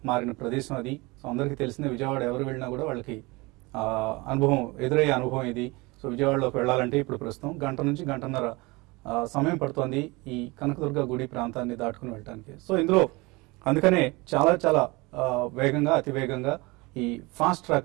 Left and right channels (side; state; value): left; quieter; 24.3 dB